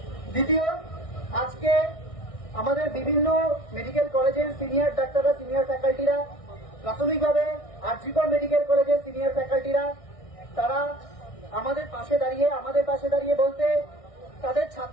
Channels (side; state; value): right; late; 1.6 ms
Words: দ্বিতীয়, আজকে আমাদের বিভিন্ন মেডিকেল কলেজের সিনিয়র ডাক্তাররা, সিনিয়র ফ্যাকাল্টিরা, প্রাথমিকভাবে আরজিকর মেডিকেল কলেজের সিনিয়র ফ্যাকাল্টিরা, তারা আমাদের পাশে দাঁড়িয়ে বলতে তাদের